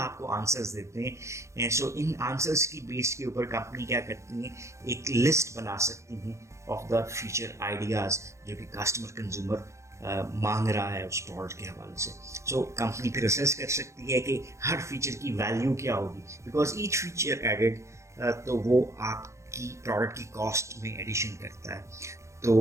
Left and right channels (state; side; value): late; left; 0.14 ms